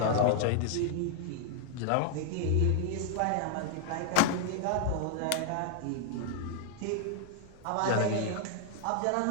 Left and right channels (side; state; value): both; different; correlation 0.00